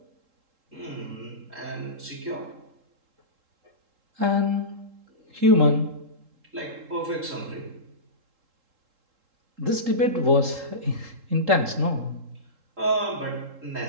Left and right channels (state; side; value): late; left; 3.7 ms